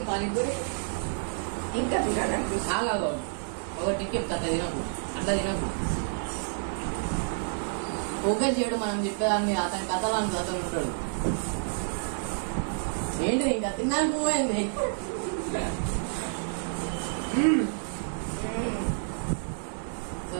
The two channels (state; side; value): silent; left; digital silence